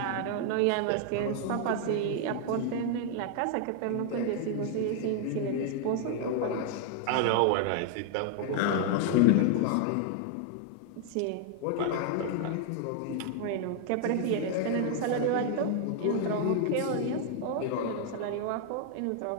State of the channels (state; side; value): different; both; correlation 0.00